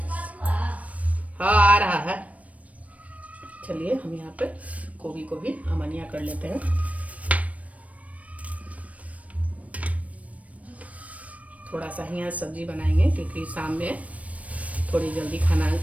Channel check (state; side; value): late; left; 0.067 ms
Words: हाँ आ रहा है। चलिए हम यहाँ पे गोभी को भी अमनिया कर लेते हैं। थोड़ा सा ही आज सब्जी बनाएंगे, क्योंकि शाम में थोड़ी जल्दी खाना